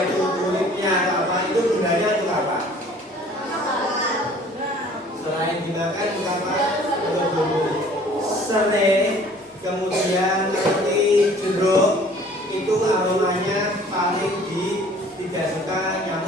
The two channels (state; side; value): normal; both; correlation 0.52